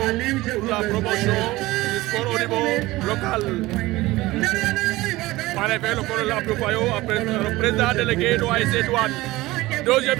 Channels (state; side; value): quieter; left; 19.0 dB